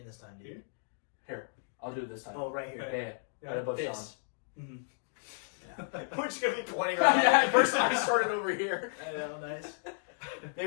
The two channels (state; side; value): silent; right; digital silence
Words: this time, dude? Here, I'll do it this time. Oh, right here. Yeah. Yeah. Right above This. Mm-hmm. We're just going to be pointing Sean. around. Yeah, first time I started over here. I know, nice.